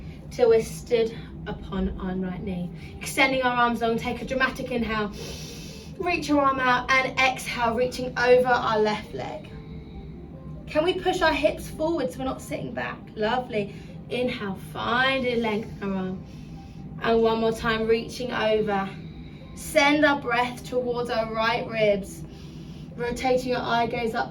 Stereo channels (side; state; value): both; identical; correlation 1.00